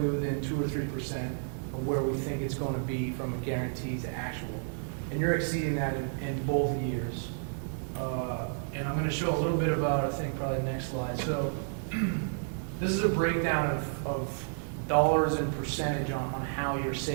within 2 or 3% of where we think it's going to be from a guarantee to actual. And you're exceeding that in both years. And I'm going to show a little bit about, I think, probably the next slide. So this is a breakdown of dollars and percentage on how you're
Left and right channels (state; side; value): silent; left; digital silence